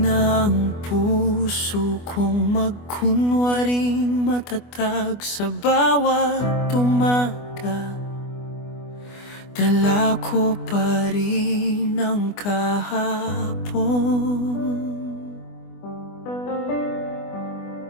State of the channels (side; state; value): right; late; 24 ms